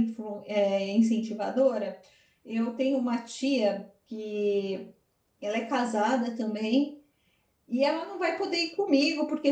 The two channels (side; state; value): both; identical; correlation 1.00